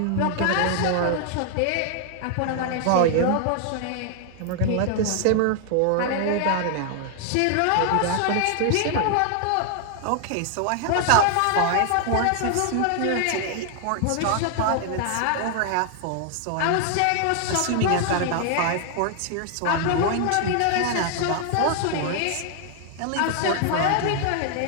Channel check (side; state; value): both; different; correlation 0.00